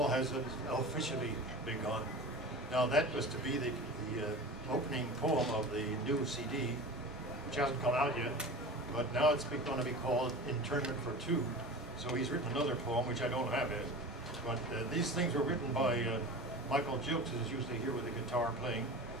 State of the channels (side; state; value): both; normal; correlation 0.33